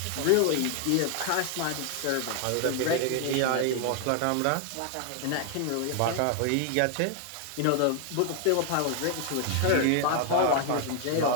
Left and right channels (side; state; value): both; different; correlation 0.00